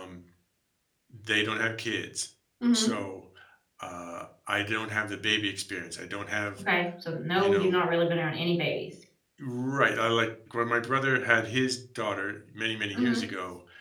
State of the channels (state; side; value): identical; both; correlation 1.00